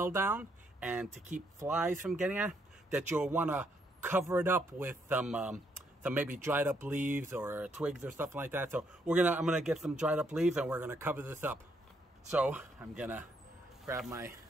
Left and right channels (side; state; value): both; normal; correlation 0.73